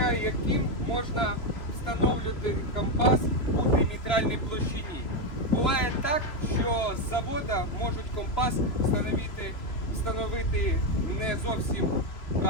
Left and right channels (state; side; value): late; right; 3.0 ms